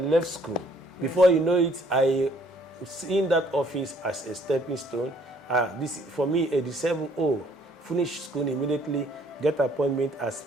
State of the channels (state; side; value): normal; both; correlation 0.62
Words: school. Before you know it, I was in that office as a stepping stone. This for me, 87, finish school immediately, get appointment as